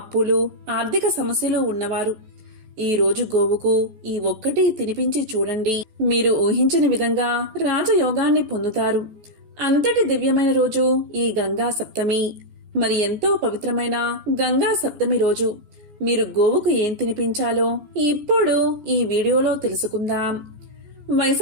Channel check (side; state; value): left; late; 14 ms